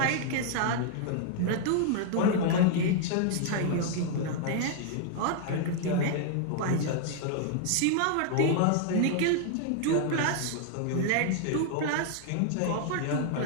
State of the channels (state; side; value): different; both; correlation 0.00